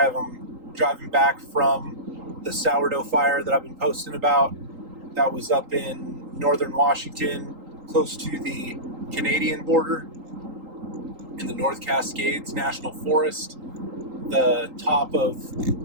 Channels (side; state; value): left; late; 3.8 ms